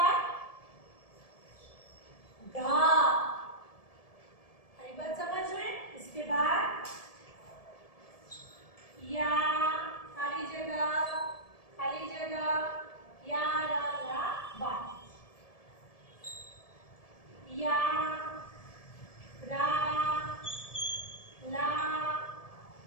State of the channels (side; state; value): right; late; 1.7 ms